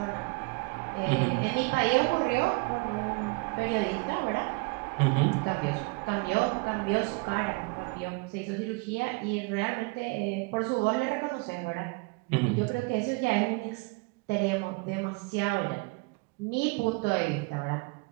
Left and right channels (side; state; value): left; quieter; 28.2 dB